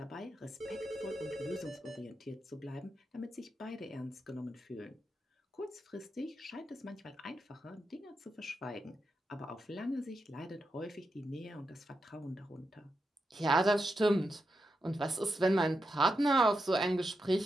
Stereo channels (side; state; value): both; normal; correlation 0.86